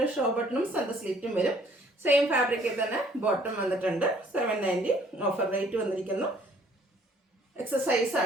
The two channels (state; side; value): normal; both; correlation 0.59